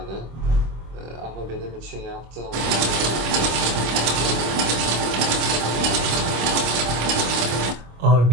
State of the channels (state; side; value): late; left; 25 ms